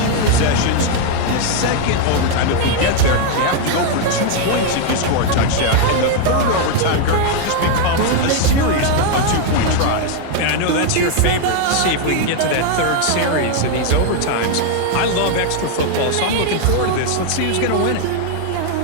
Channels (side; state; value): both; different; correlation 0.00